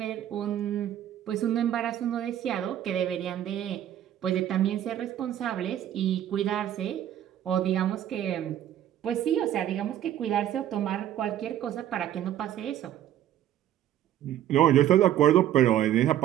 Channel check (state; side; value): quieter; left; 11.6 dB